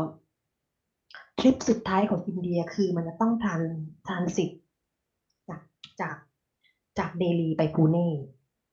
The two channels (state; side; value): identical; both; correlation 1.00